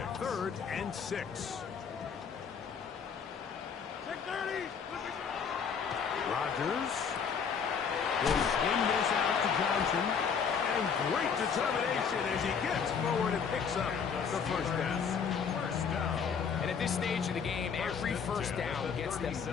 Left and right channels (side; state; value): right; quieter; 6.5 dB